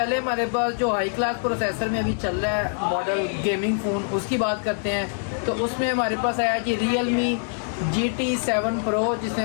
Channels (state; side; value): silent; right; 60 dB below the other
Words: हमारे पास जो हाई क्लास प्रोसेसर में अभी चल रहा है मॉडल गेमिंग फ़ोन, उसकी बात करते हैं। तो उसमें हमारे पास आया जी Realme GT7 Pro, जिसमें